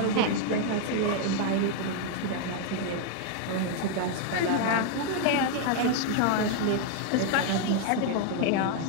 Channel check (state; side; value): different; both; correlation 0.00